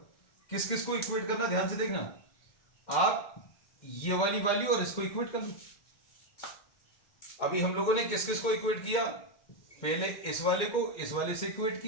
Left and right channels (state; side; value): late; right; 2.1 ms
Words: किस किस को इक्वेट करना, ध्यान से देखना, आप ये वाली वैल्यू और इसको इक्वेट कर लो। अभी हम लोगों ने किस किस को इक्वेट किया, पहले इस वाले को इस वाले से इक्वेट